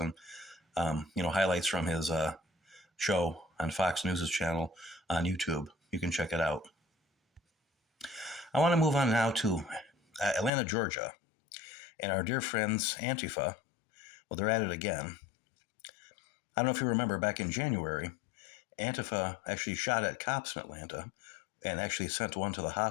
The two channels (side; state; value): right; drops out; at 10.5 s